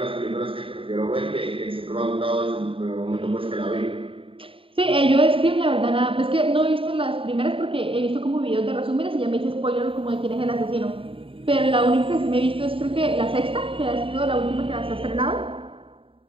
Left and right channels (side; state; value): left; late; 0.26 ms